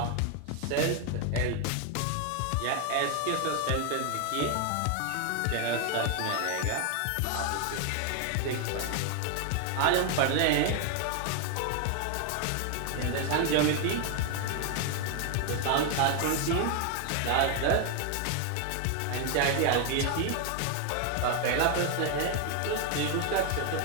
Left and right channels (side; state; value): both; different; correlation 0.01